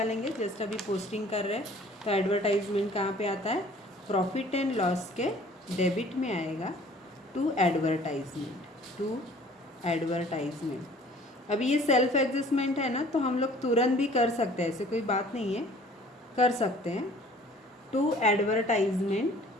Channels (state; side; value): normal; both; correlation 0.52